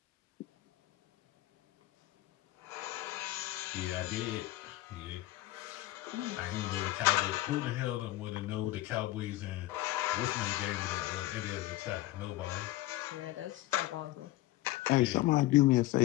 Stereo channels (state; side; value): quieter; right; 16.7 dB